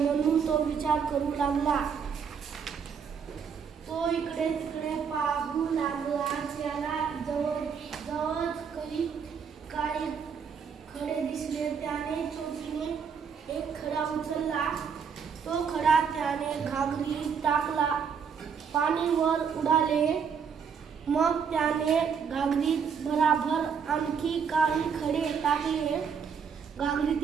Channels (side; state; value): left; quieter; 6.6 dB